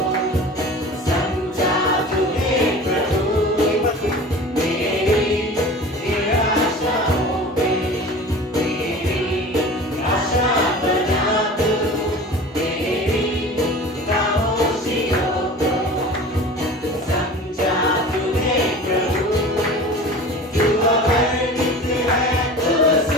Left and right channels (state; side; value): normal; both; correlation 0.38